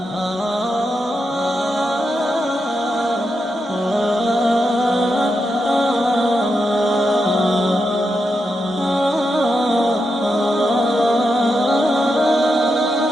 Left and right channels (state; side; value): normal; both; correlation 0.85